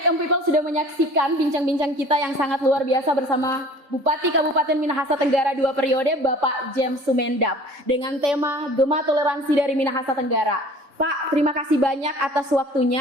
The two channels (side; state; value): left; late; 3.7 ms